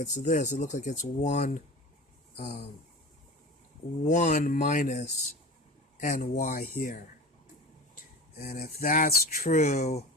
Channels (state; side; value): normal; both; correlation 0.33